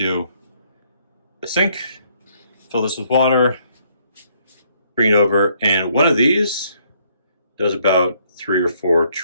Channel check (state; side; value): inverted; both; correlation -0.68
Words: the sink, fill this with water, bring it over, and one of these does about 3 or 4